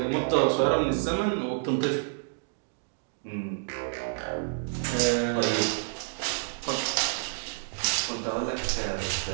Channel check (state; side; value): silent; left; digital silence